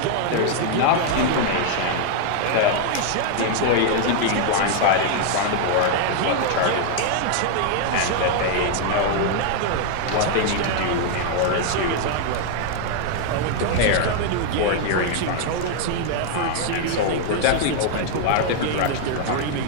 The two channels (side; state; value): both; different; correlation 0.00